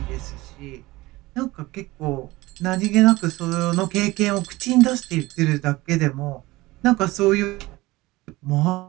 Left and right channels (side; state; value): left; quieter; 19.9 dB